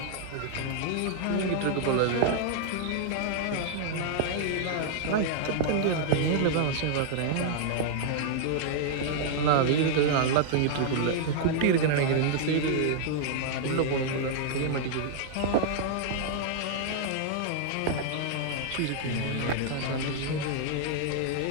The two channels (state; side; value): different; both; correlation -0.01